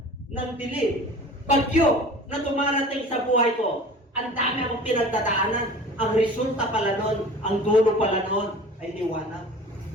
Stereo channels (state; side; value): normal; both; correlation 0.41